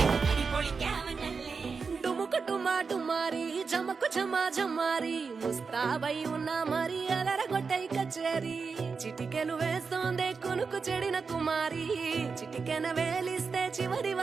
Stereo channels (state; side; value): quieter; left; 5.0 dB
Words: డుముకు డుమా డుమారి జమకు జమా జమారి ముస్తాబై ఉన్నా మరి అలరగొట్టై కచేరి చిటికెలు వేస్తోందే కొనుకు చెడిన కుమారి చిటికెన వేలిస్తే చివరి